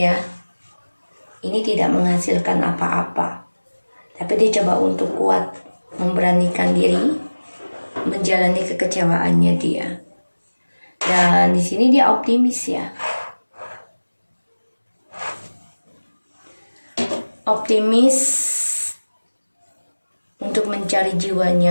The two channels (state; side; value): inverted; both; correlation -1.00